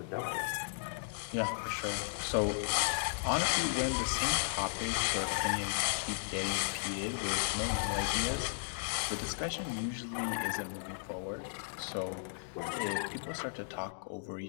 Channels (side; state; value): right; silent; digital silence